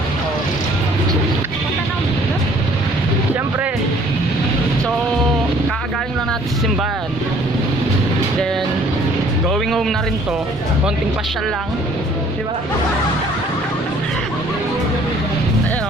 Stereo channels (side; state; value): both; normal; correlation 0.57